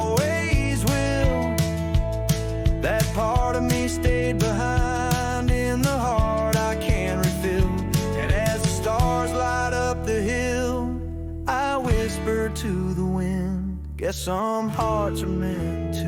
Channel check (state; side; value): identical; both; correlation 1.00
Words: will. That part of me stayed behind in the heart I can't refill. And as the stars light up the hill, I whisper to the wind, guess some hearts are meant